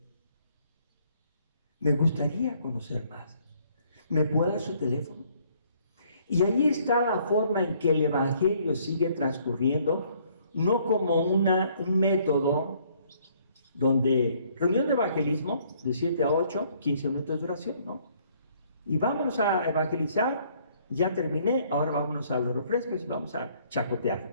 Me gustaría conocer más. ¿Me puede dar su teléfono? Y ahí está la forma en que el Evangelio sigue transcurriendo, no como un método donde reunión de evangelismo de 7 a 8, 15 minutos de oración, ¿no? Y vámonos a evangelizar, ya terminé, ahora vámonos a los refrescos y vamos a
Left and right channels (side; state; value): both; inverted; correlation -0.64